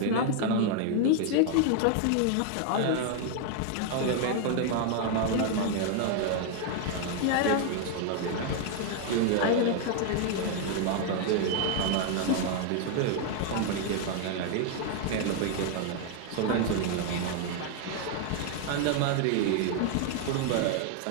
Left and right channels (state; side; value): different; both; correlation 0.00